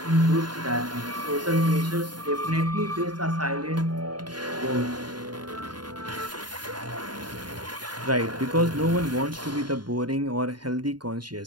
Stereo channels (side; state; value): left; late; 0.70 ms